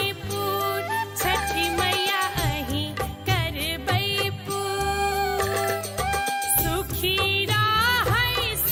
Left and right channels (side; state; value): both; identical; correlation 1.00